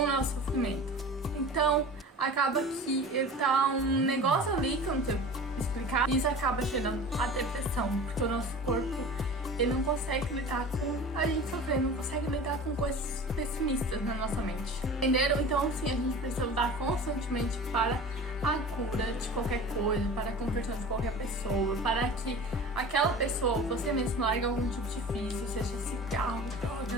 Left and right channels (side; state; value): both; normal; correlation 0.37